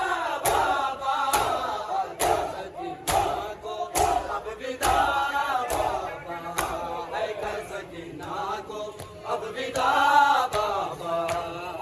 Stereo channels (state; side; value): identical; both; correlation 1.00